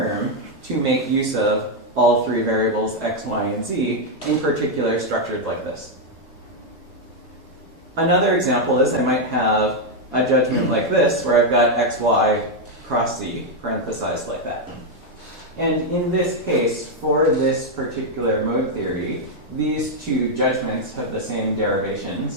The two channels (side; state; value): both; normal; correlation 0.01